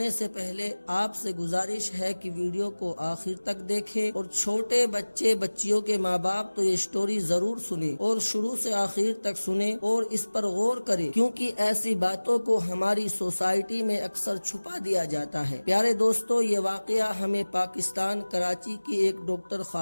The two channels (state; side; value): inverted; both; correlation -1.00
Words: سے پہلے آپ سے گزارش ہے کہ ویڈیو کو آخر تک دیکھیں اور چھوٹے بچیوں کے ماں باپ تو یہ سٹوری ضرور سنیں اور شروع سے آخر تک سنیں اور اس پر غور کریں، کیونکہ ایسی باتوں کو ہماری سوسائٹی میں اکثر چھپا دیا جاتا ہے۔ پیارے دوستو، یہ واقعہ ہمیں پاکستان کراچی کی ایک ڈاکٹر